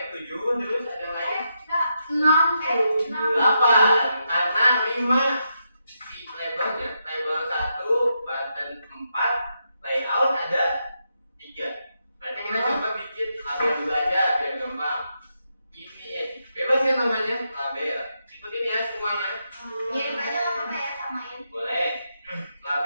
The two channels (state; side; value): inverted; both; correlation -0.83